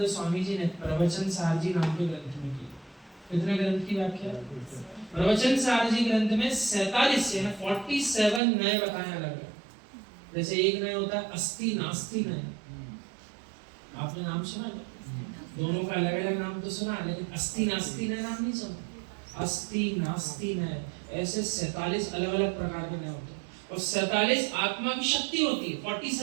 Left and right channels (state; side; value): drops out; left; at 8.4 s